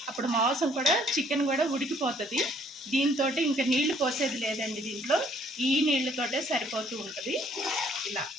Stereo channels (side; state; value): both; normal; correlation 0.62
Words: అప్పుడు మాంసం కూడా చికెన్ కూడా ఉడికిపోతుంది. దీంతో ఇంకా నీళ్లు పోసేది లేదండి, దీంట్లో ఈ నీళ్ళతోటే సరిపోతూ ఉంటుంది. ఇలా